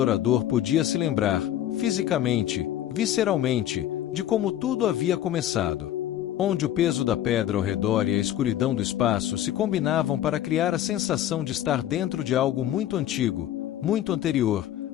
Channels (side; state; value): right; quieter; 12.0 dB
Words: podia se lembrar, fisicamente, visceralmente, de como tudo havia começado. Onde o peso da pedra ao redor e a escuridão do espaço se combinavam para criar a sensação de estar dentro de algo muito antigo, muito anterior,